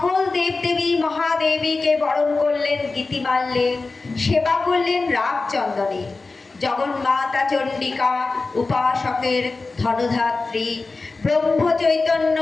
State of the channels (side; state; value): right; quieter; 3.7 dB